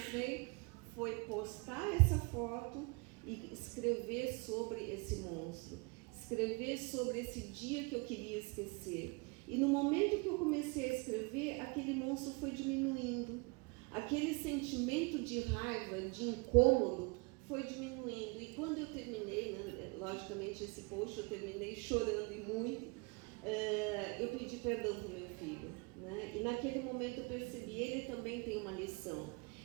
foi postar essa foto e escrever sobre esse monstro, escrever sobre esse dia que eu queria esquecer. E no momento que eu comecei a escrever, aquele monstro foi diminuindo, aquele sentimento de raiva, de incômodo, foi diminuindo. E quando eu terminei, né, logicamente esse post eu terminei chorando e muito, eu pedi perdão para o meu filho, né? E naquele momento eu percebi, ele também tem uma lição,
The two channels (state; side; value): quieter; left; 29.8 dB